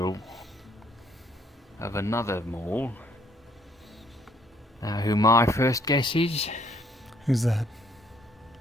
of another mole. Who my first guess is? Who's that?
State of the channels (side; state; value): both; normal; correlation 0.66